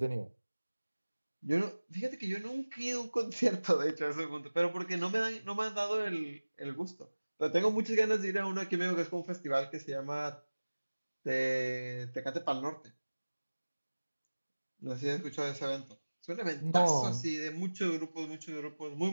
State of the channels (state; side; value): inverted; both; correlation -1.00